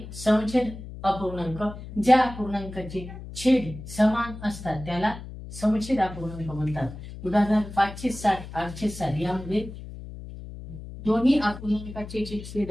समछेद अपूर्णांक। ज्या अपूर्णांकाचे छेद समान असतात त्याला समछेद अपूर्णांक म्हणतात। उदाहरण 560 860 यामध्ये दोन्ही अपूर्णांकाचे जे छेद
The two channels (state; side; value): noise; left; hum, 12 dB below the sound